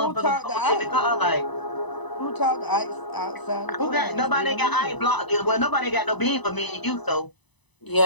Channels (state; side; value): late; right; 1.0 ms